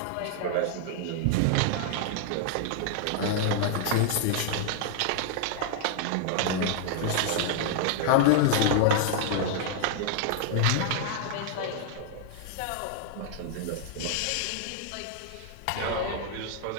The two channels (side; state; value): both; different; correlation 0.00